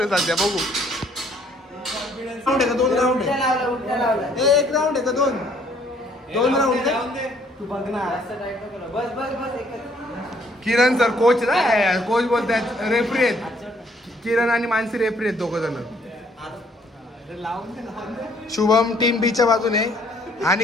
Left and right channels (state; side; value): normal; both; correlation 0.63